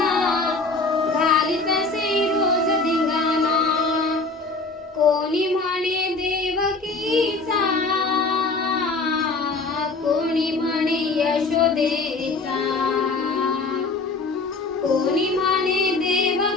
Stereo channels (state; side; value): quieter; right; 3.6 dB